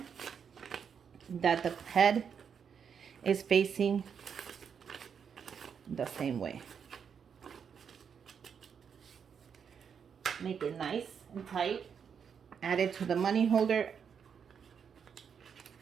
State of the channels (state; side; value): quieter; left; 7.1 dB